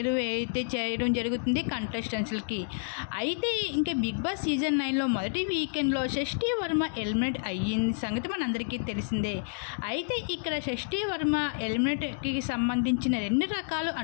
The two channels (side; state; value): right; silent; digital silence